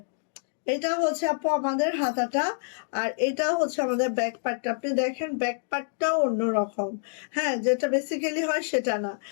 এটা হচ্ছে আপু আমাদের হাতাটা, আর এটা হচ্ছে আমাদের ব্যাক পার্টটা। আপনি দেখেন ব্যাক পার্টটাও অন্যরকম। হ্যাঁ যেটা বেসিক্যালি হয় সেটা না,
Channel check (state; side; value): silent; right; digital silence